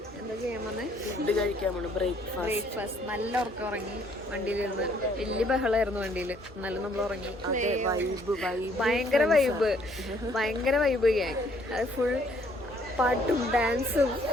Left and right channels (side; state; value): both; normal; correlation 0.64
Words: എന്താ ചെയ്യാൻ വന്നേ? ഫുഡ് കഴിക്കാൻ വേണം. ബ്രേക്ക്ഫാസ്റ്റ് നല്ല ഉറക്കം ഉറങ്ങി. വണ്ടിയിലിരുന്ന് വലിയ ബഹളമായിരുന്നു വണ്ടിയിൽ. എന്നാലും നമ്മൾ ഉറങ്ങി. ഭയങ്കര വൈബ് ഗ്യാങ്. അത് ഫുൾ പാട്ടും ഡാൻസും